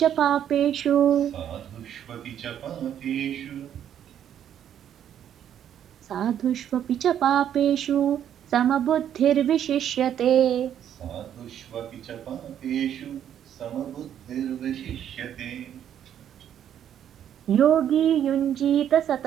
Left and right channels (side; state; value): left; quieter; 9.9 dB